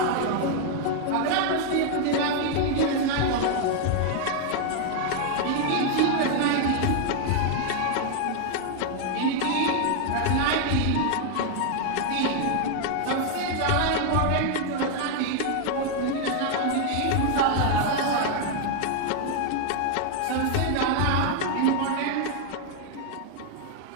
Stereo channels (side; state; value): both; different; correlation 0.00